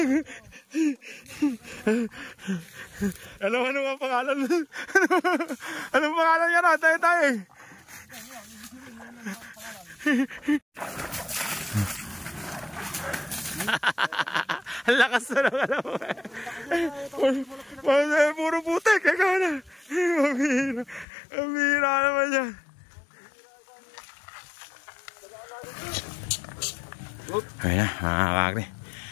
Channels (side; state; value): right; drops out; at 21.1 s